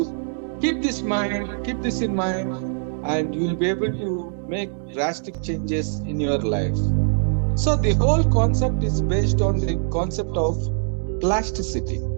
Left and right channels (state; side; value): silent; left; digital silence